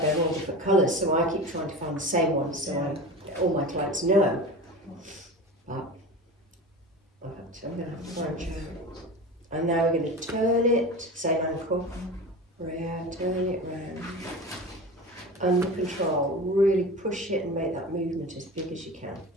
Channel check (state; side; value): normal; both; correlation 0.31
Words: all different colours, so I keep trying to find the same one, so all my clients know. But I'm going to have to branch out. And now we're going to turn it, same ankle, round, turn it round. Under control, really push it and make that movement as big as you can.